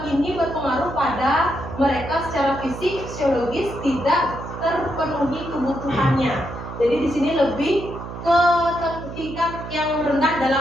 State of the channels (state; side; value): noise; right; hum, 10 dB below the sound